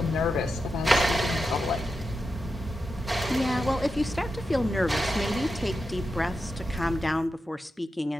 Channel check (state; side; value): normal; both; correlation 0.89